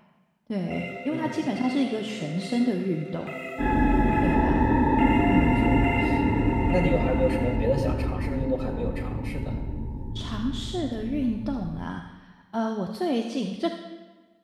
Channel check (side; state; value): both; identical; correlation 1.00